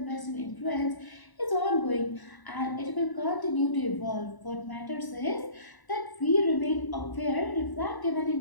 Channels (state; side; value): late; right; 1.0 ms